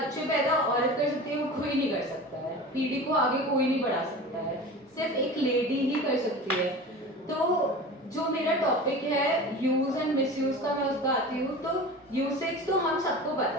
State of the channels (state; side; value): normal; both; correlation 0.35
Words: पैदा औरत कर सकती है, वो कोई नहीं कर सकता है, पीढ़ी को आगे कोई नहीं बढ़ा सकता है, सिर्फ एक लेडी ही कर सकती है। तो जो मेरा टॉपिक है यूज एंड मिसयूज का, मैं उसका आती हूँ। तो यूसेज तो हम सबको पता